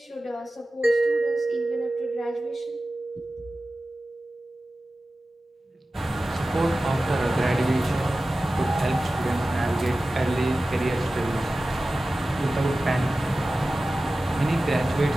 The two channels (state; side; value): normal; both; correlation 0.95